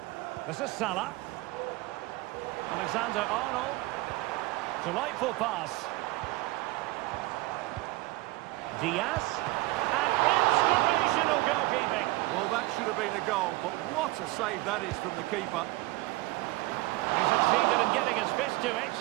This is Salah. Alexander-Arnold. Delightful pass. Diaz. And inspirational goalkeeping. Well, that should have been a goal, but what a save that is from the keeper. He succeeded in getting his fist to it.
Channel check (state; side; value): quieter; left; 20.3 dB